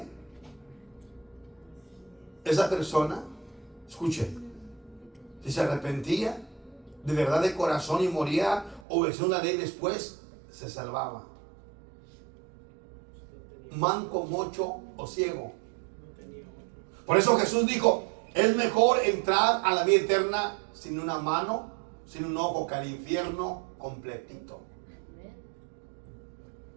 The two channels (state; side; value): drops out; left; at 8.8 s